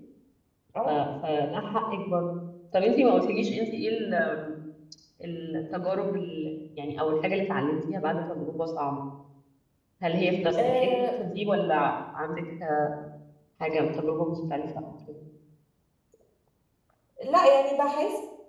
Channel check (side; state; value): both; identical; correlation 1.00